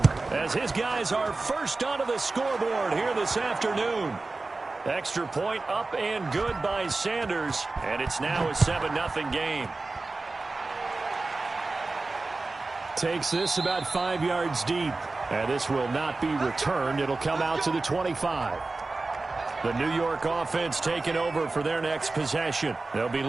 as his guys are first onto the scoreboard here this afternoon. Extra point up and good by Sanders, and it's now a 7-0 game. Takes this about 5 yards deep, and this will not be returned. It'll come out to the 25. The New York offense taking over for their next possession. They'll be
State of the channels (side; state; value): left; quieter; 3.5 dB